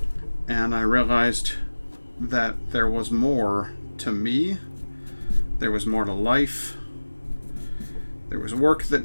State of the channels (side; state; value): both; inverted; correlation -1.00